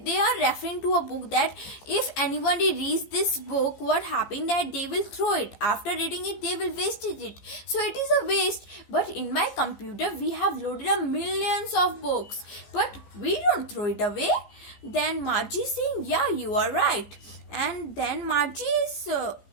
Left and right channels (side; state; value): right; late; 15 ms